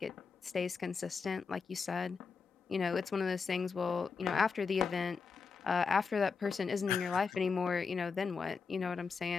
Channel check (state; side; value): quieter; right; 5.2 dB